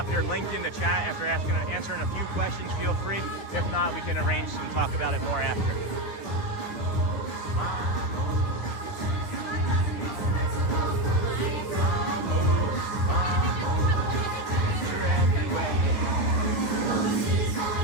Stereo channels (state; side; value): late; right; 9.6 ms